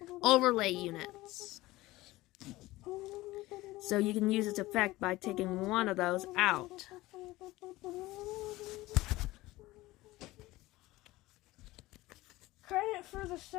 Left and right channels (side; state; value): right; quieter; 18.5 dB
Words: overlay units. So you can use its effect by taking one of those out. credit for the